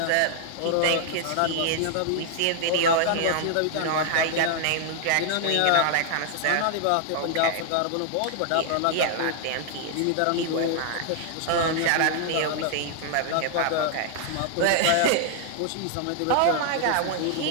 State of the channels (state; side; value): different; both; correlation 0.00